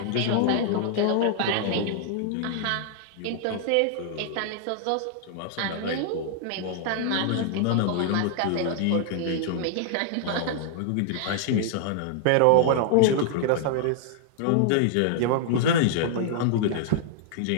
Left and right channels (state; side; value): different; both; correlation -0.01